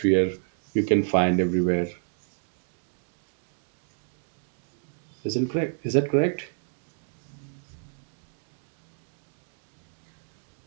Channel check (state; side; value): silent; left; digital silence